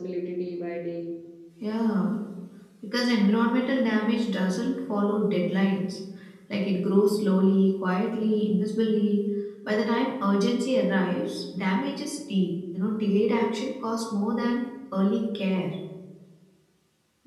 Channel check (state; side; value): identical; both; correlation 1.00